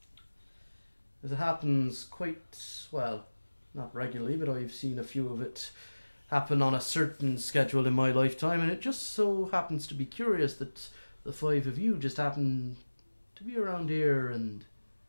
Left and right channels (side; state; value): both; inverted; correlation -1.00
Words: As it happens quite, well, not regularly, but I've seen a few of it happen on a certain schedule in my lifetime, and it just so happens to be curious that the five of you just happen to be around here and